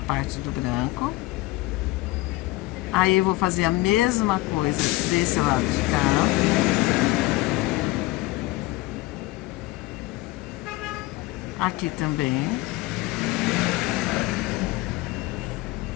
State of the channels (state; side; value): quieter; right; 19.4 dB